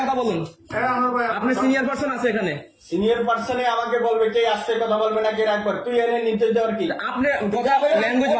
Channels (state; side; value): identical; both; correlation 1.00